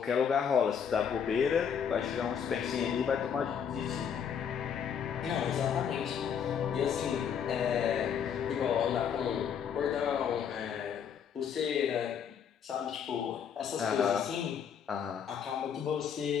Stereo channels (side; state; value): right; quieter; 7.8 dB